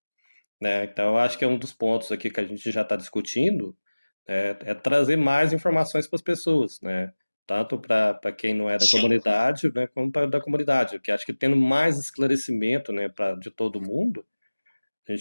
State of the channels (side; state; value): both; inverted; correlation -1.00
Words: né? Então, eu acho que é um dos pontos aqui que a gente já está discutindo, é trazer mais informações para as pessoas, né? Tanto para quem não é da Sim. comunidade, né, como para da comunidade, porque acho que tendo mais esclarecimento, né, de todo mundo, a